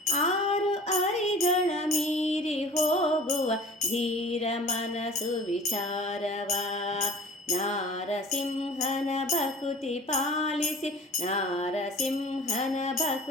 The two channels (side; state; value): both; normal; correlation 0.44